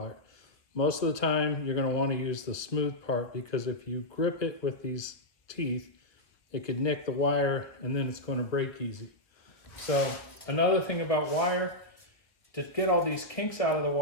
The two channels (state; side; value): late; right; 1.4 ms